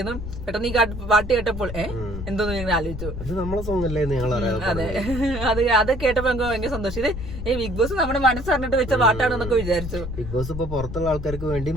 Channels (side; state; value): left; noise; rumble, 8 dB below the sound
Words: പെട്ടെന്ന് ഈ പാട്ട് കേട്ടപ്പോൾ എന്തോന്ന് ഞങ്ങൾ ആലോചിച്ചു. അതെ, അത് കേട്ടപ്പോ ഞങ്ങൾക്ക് ഭയങ്കര സന്തോഷം. ഇത് ബിഗ് ബോസ് നമ്മുടെ മനസ്സറിഞ്ഞിട്ട് വെച്ച പാട്ടാണെന്നൊക്കെ വിചാരിച്ചു. ബിഗ് ബോസ് ഇപ്പൊ പുറത്തുള്ള ആൾക്കാർക്ക് വേണ്ടിയും